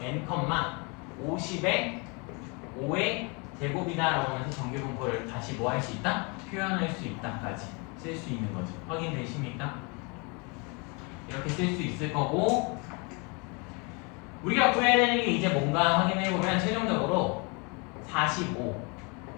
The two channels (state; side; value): quieter; right; 31.3 dB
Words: n, 50에 5의 제곱이다라고 하면서 정규 분포를 다시 뭐 할 수 있다? 표현할 수 있다까지 쓸 수 있는 거죠. 확인되십니까? 이렇게 쓸 수 있을 거고 우리가 구해야 되는 게 이제 뭔가 확인해보면 최종적으로 45